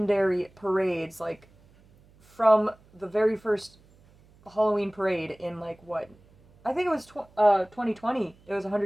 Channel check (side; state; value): right; noise; hum, 29 dB below the sound